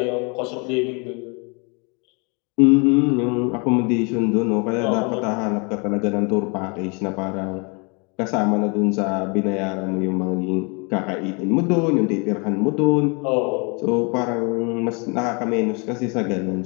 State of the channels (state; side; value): quieter; right; 32.6 dB